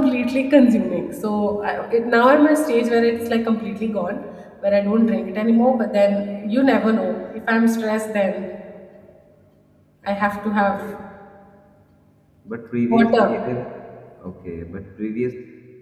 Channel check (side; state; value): both; identical; correlation 1.00